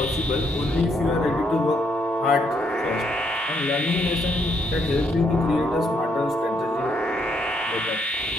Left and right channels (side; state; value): both; normal; correlation 0.74